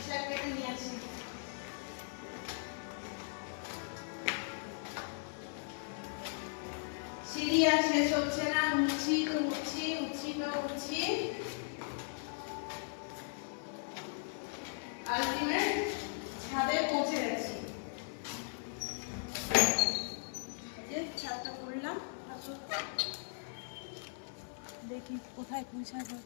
শাক কেটে নিয়ে আসি। সিঁড়ি আর শেষ হচ্ছে না, উঠছি তো উঠছি, উঠছি তো উঠছি, আলটিমেট ছাদে পৌঁছে গেছি। ছাদটা করলাম, দেখি কোথায় পুঁই শাক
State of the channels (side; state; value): right; silent; 53 dB below the other